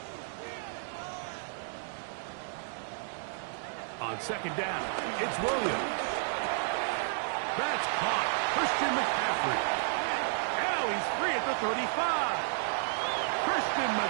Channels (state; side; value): silent; left; digital silence